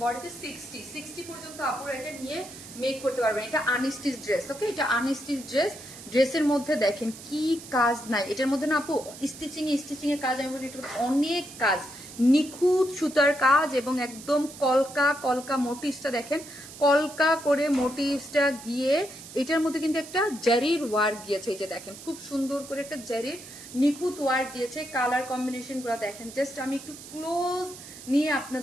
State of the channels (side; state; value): right; noise; hiss, 15 dB below the sound